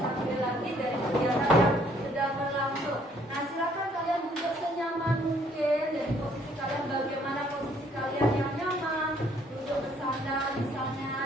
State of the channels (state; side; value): normal; both; correlation 0.64